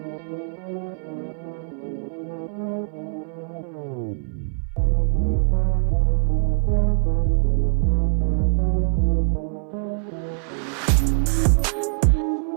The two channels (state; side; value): silent; left; 61 dB below the other